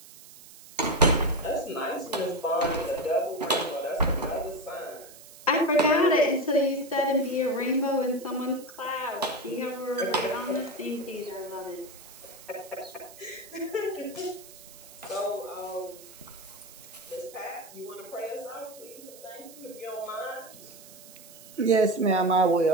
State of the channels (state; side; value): noise; right; hiss, 19 dB below the sound